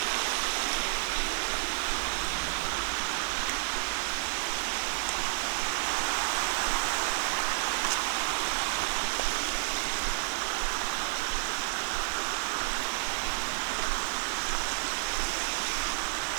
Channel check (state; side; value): silent; left; digital silence